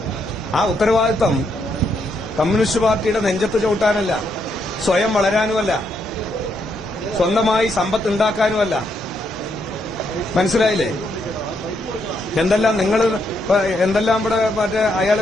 ആ ഉത്തരവാദിത്തം കമ്മ്യൂണിസ്റ്റ് പാർട്ടിയുടെ നെഞ്ചത്ത് ചവിട്ടാനല്ല, സ്വയം വളരാനുമല്ല, സ്വന്തമായി സമ്പത്ത് ഉണ്ടാക്കാനുമല്ല. മനസ്സിലായില്ലേ? എന്തെല്ലാം ഇവിടെ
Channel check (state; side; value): normal; both; correlation 0.77